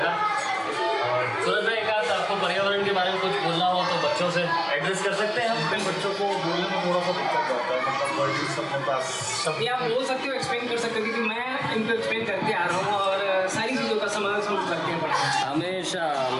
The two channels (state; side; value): identical; both; correlation 1.00